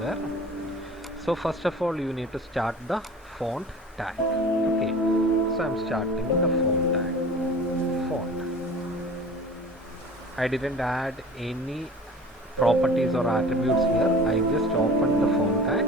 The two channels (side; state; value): both; normal; correlation 0.41